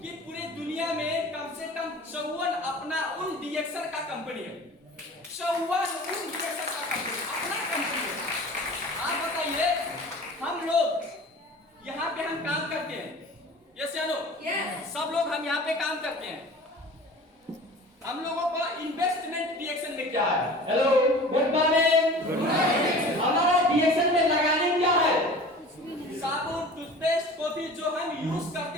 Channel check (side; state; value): both; normal; correlation 0.41